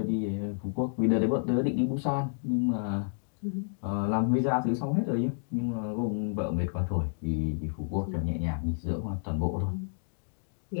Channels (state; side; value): silent; right; digital silence